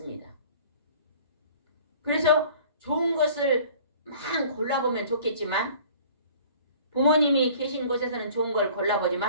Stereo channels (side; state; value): both; inverted; correlation -0.49